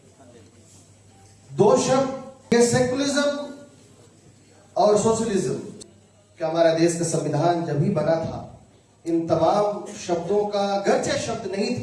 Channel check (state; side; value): identical; both; correlation 1.00